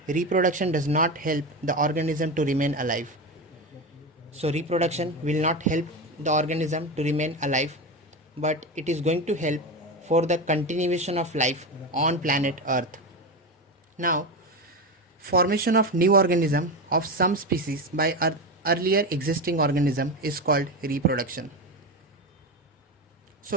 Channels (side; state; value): both; normal; correlation 0.19